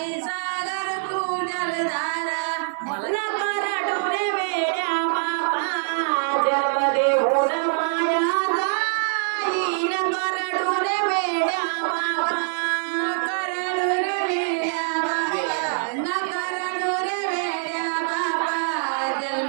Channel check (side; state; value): left; silent; digital silence